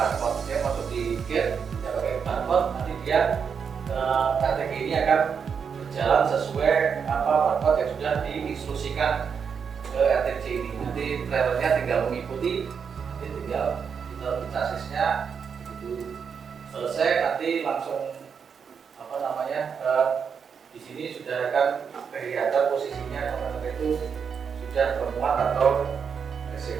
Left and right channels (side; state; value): left; quieter; 6.6 dB